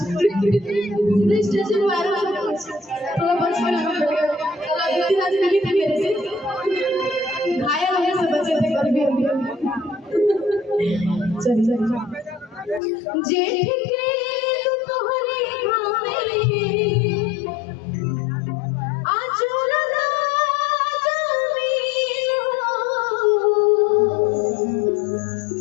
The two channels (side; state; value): right; drops out; at 12.8 s